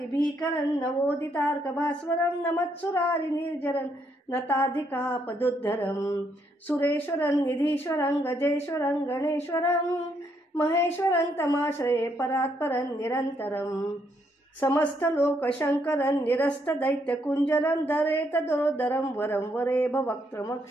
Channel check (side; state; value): both; normal; correlation 0.74